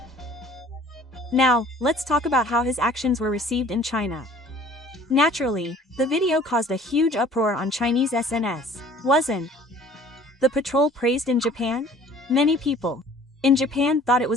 Now, let's talk about how his actions were received in China. Naturally, the video caused a huge uproar on Chinese SNS. Wasn't the patrol praised in Japan? Many people in Japan thought it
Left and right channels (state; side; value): normal; both; correlation 0.51